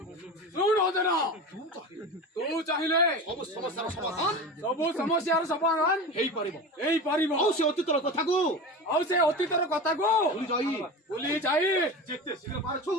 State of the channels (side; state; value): both; normal; correlation 0.29